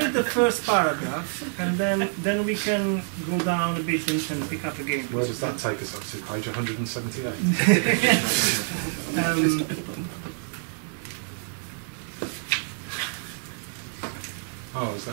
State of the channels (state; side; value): silent; left; 60 dB below the other